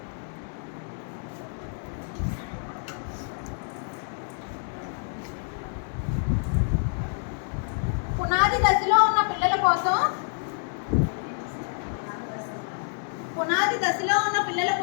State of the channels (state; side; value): silent; right; 58 dB below the other